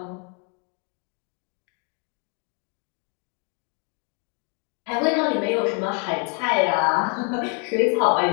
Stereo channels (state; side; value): quieter; right; 35.1 dB